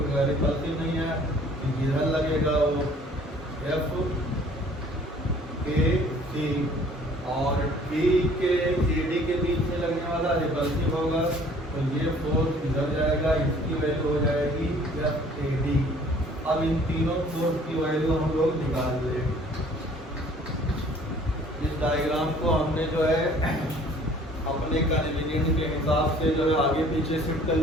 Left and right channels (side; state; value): both; normal; correlation 0.54